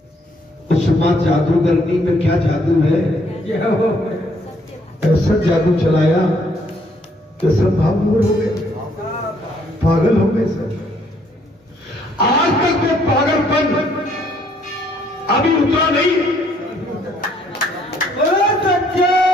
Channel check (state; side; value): normal; both; correlation 0.67